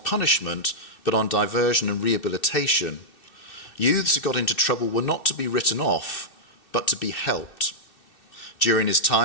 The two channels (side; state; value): right; late; 2.6 ms